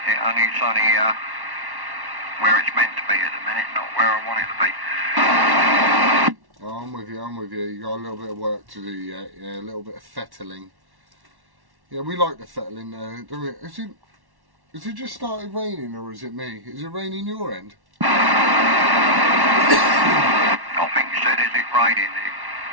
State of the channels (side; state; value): left; late; 1.1 ms